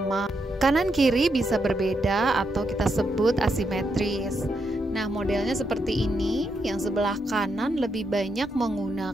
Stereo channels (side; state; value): both; normal; correlation 0.81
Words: Kanan kiri bisa berbeda atau kita sebut asimetris. Nah, modelnya seperti ini. Yang sebelah kanan lebih banyak